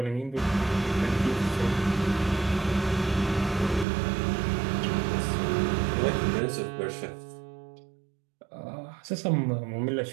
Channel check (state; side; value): drops out; left; at 3.9 s